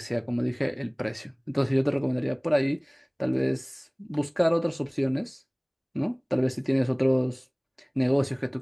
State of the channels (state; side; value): identical; both; correlation 1.00